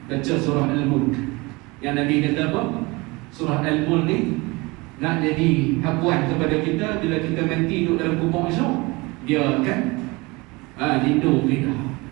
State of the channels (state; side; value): quieter; left; 24.5 dB